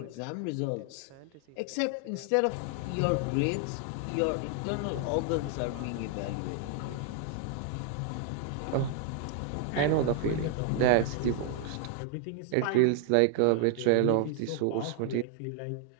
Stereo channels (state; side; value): different; both; correlation 0.00